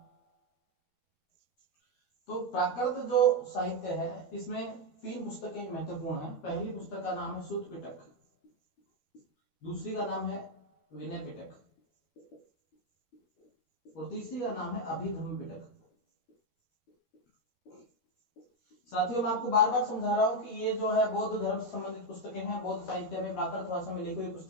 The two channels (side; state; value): right; late; 12 ms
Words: तो प्राकृत जो साहित्य है इसमें तीन पुस्तकें महत्वपूर्ण हैं। पहली पुस्तक का नाम है सूत पिटक, दूसरी का नाम है विनय पिटक, और तीसरी का नाम है अभिधम्म पिटक। साथियों मैं आपको बार बार समझा रहा हूं कि ये जो है बौद्ध धर्म से संबंधित पुस्तकें हैं, बौद्ध साहित्य में प्राकृत भाषा में लिखी हुई